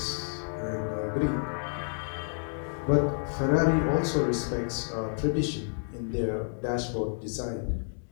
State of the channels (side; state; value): right; silent; digital silence